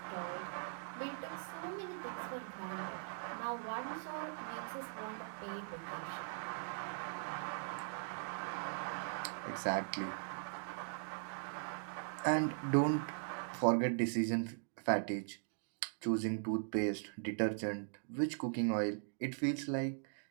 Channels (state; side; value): silent; left; digital silence